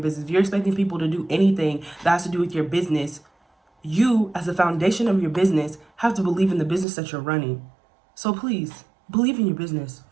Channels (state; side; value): drops out; left; at 6.9 s